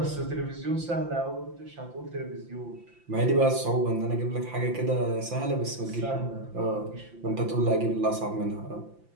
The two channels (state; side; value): late; left; 5.8 ms